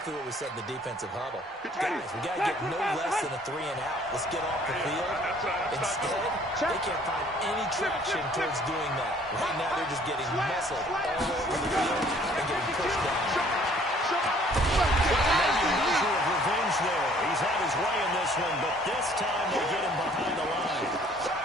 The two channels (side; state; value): both; normal; correlation 0.58